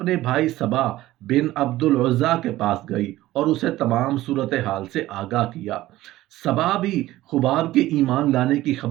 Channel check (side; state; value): left; quieter; 16.1 dB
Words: بھائی صبا بن عبد العزا کے پاس گئی اور اسے تمام صورتحال سے آگاہ کیا۔ صبا بھی خباب کے ایمان لانے کی